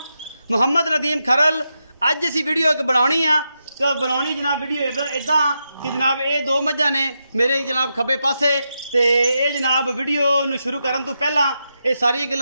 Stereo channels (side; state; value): both; inverted; correlation -0.86